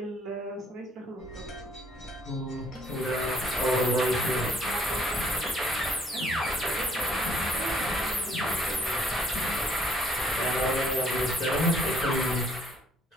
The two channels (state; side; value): normal; both; correlation 0.63